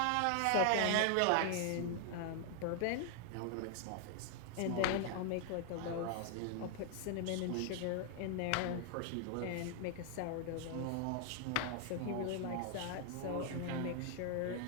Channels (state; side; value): different; both; correlation 0.00